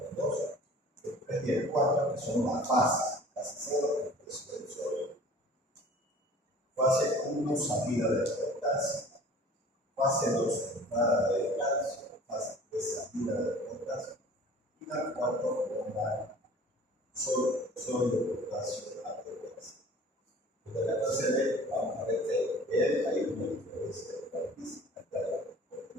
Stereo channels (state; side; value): normal; both; correlation 0.46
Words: 2, el 3 y el 4, que son las fases, fase 0, fase 1, salida de potasio, fase 2, entrada de calcio, fase 3, salida de potasio, y la 4, bomba sodio potasio a potasio. De la fase B, vamos a ver que hay una diferencia de física,